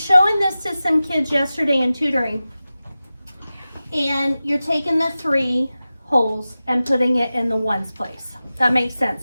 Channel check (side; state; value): both; inverted; correlation -0.95